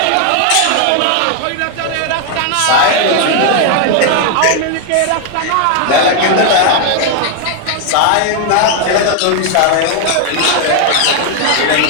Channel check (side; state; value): both; different; correlation 0.00